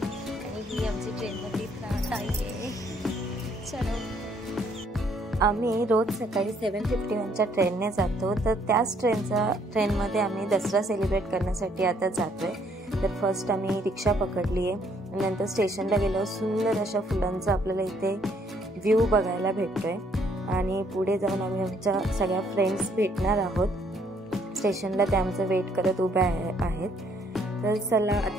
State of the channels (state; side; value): normal; both; correlation 0.67